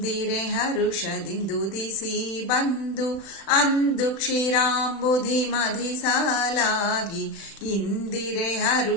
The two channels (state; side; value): late; right; 36 ms